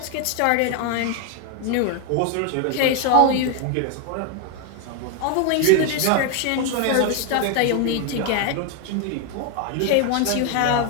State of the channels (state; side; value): different; both; correlation 0.01